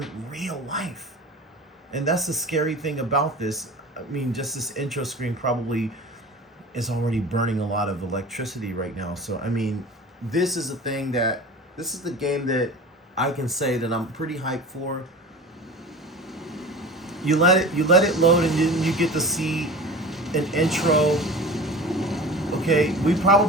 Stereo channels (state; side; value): normal; both; correlation 0.36